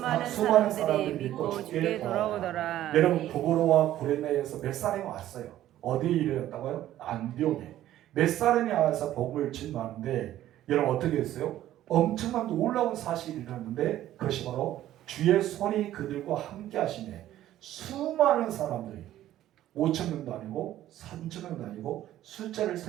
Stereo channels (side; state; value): left; quieter; 13.2 dB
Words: 사람들이 믿고 주께 돌아오더라. 여러분 구브로와 고레네에서 몇 사람이 왔어요. 어디에 이르렀다고요? 안디옥에. 몇 사람이 와서 복음을 증거하는데 여러분 어떻게 했어요? 엄청난 놀라운 사실이 일어났는데 그것이 바로 주의 손이 그들과 함께 하시네. 수많은 사람들이 5,000명도 아니고 3,000명도 아니고 숫자를